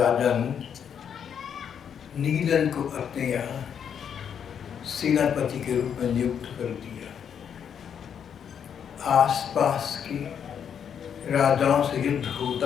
ने नीदन को अपने यहाँ सेनापति के रूप में नियुक्त कर दिया। आसपास के राजाओं से युद्ध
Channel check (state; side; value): quieter; right; 8.0 dB